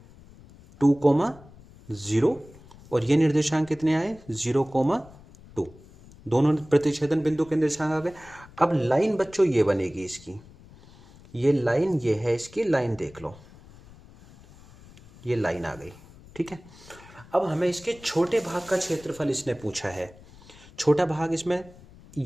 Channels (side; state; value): left; noise; rumble, 22 dB below the sound